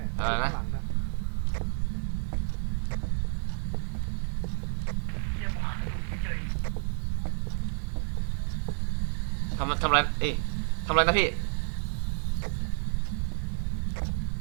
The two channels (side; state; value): left; silent; 58 dB below the other